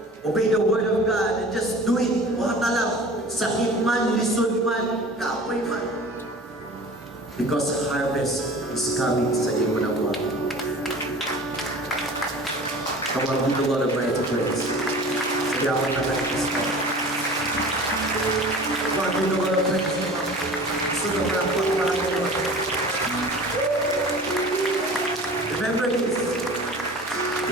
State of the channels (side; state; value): both; normal; correlation 0.41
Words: Obey the word of God and just do it. Huwag na lang. Sakit man, lisod man, kapoy man. Because harvest is coming sa iyo na buwan. Come on, give the Lord a praise. Sigawan na tayo this morning. Come on, give the Lord a praise. Sunod na po para kayo. Remember this.